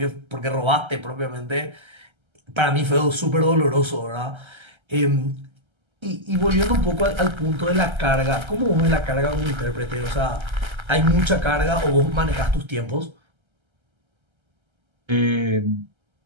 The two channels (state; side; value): late; left; 1.3 ms